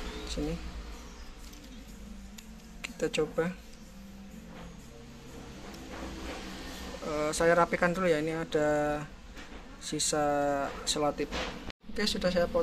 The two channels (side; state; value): both; identical; correlation 1.00